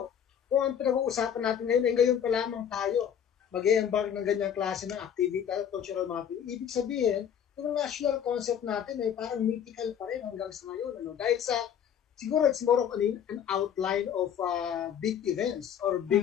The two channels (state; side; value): quieter; right; 8.7 dB